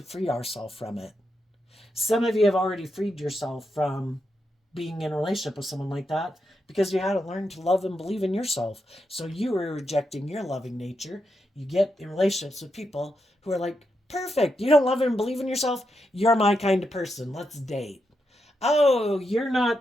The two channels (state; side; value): normal; both; correlation 0.84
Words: free ourselves from it? Some of you have already freed yourself from being in a relationship with someone like that because you hadn't learned to love and believe in yourself. So you were rejecting your loving nature. You get in relationships with people who are like, perfect, you don't love and believe in yourself? You're my kind of person. Let's date. Oh, you're